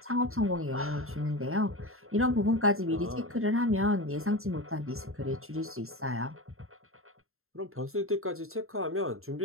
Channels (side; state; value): left; late; 0.62 ms